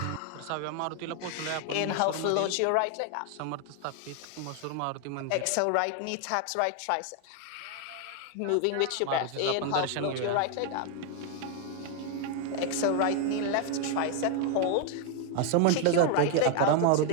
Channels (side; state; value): both; different; correlation 0.00